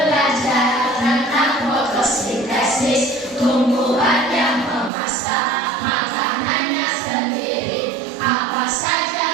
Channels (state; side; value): drops out; left; at 4.9 s